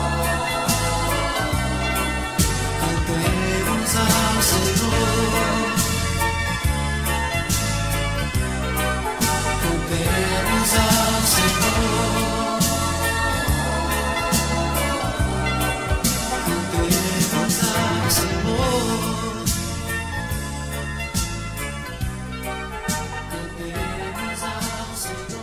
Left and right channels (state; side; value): identical; both; correlation 1.00